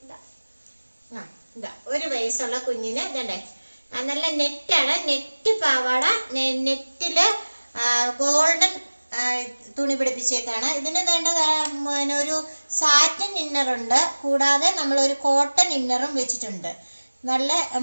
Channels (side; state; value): both; inverted; correlation -1.00